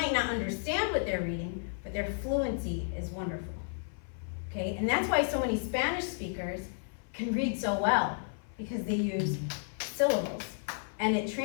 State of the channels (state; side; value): silent; right; 56 dB below the other